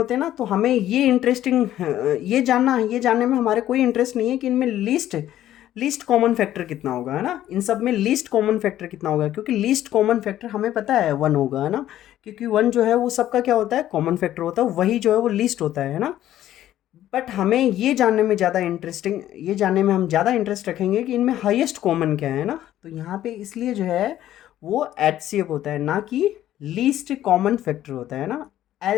हैं ना, तो हमें ये इंटरेस्टिंग ये जानने में हमारे कोई इंटरेस्ट नहीं है कि इनमें लीस्ट कॉमन फैक्टर कितना होगा, है ना। इन सब में लीस्ट कॉमन फैक्टर कितना होगा, क्योंकि लीस्ट कॉमन फैक्टर हमें पता है 1 होगा, है ना, क्योंकि 1 जो है वो सबका क्या होता है, कॉमन फैक्टर होता है, वही जो है वो लीस्ट होता है ना। बट हमें ये जानने में ज़्यादा इंटरेस्टिंग, ये जानने में हम ज़्यादा इंटरेस्ट रखेंगे कि इनमें हाईएस्ट कॉमन क्या है ना। तो यहाँ पे इसलिए जो है वो HCF होता है, ना कि लीस्ट कॉमन फैक्टर होता है ना,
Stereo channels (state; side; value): quieter; right; 12.7 dB